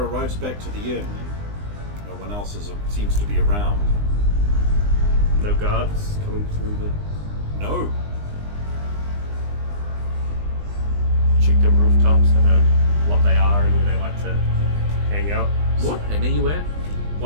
back to the inn, and no one else seems to be around. No guards coming through the... No. Check the rooftops, I know what they are and where they like to hang out. What? And are you at?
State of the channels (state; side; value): late; left; 20 ms